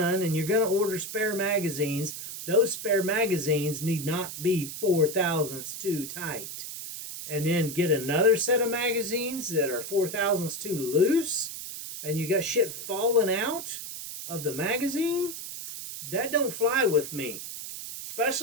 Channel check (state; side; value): noise; right; hiss, 8 dB below the sound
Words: and you're going to order spare magazines, those spare magazines need not be 4 thousandths too tight. And then get another set of magazines that are 4 thousandths too loose, and you got shit falling out of the magazine. That don't fly with me.